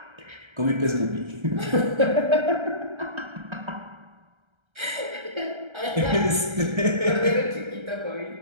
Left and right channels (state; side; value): late; left; 1.3 ms